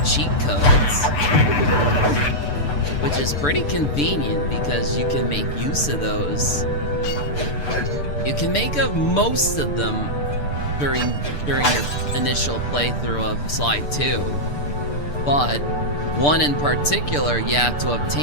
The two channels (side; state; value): right; late; 6.8 ms